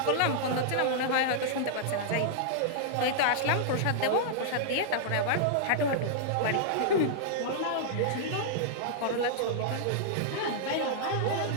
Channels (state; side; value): different; both; correlation -0.02